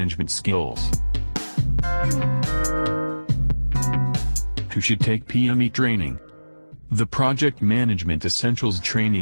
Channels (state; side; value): inverted; both; correlation -1.00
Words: skills. Who should take PME training? The Project Management Essentials